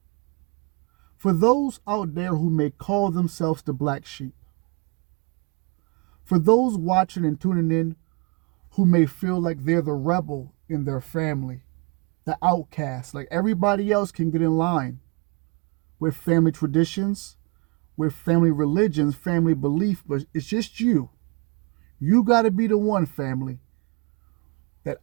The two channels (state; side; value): quieter; left; 31.3 dB